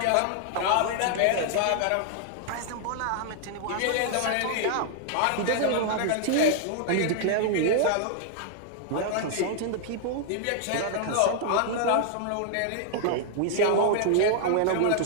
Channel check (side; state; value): both; different; correlation -0.01